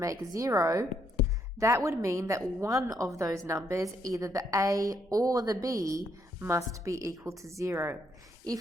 0, that would mean that one of those numbers, either the a or the b, must be equal to 0.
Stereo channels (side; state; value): both; normal; correlation 0.73